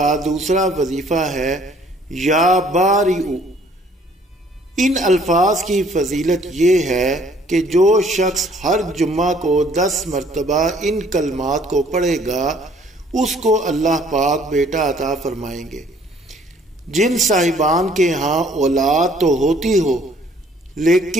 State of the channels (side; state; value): both; normal; correlation 0.60